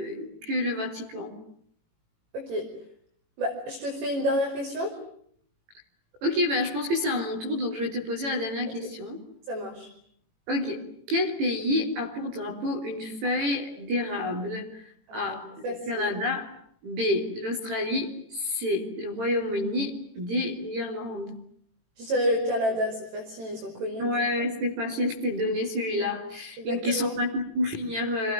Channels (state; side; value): late; left; 18 ms